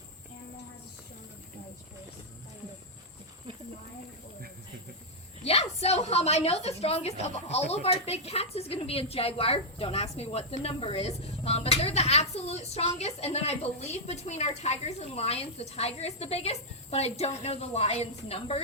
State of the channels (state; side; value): normal; both; correlation -0.06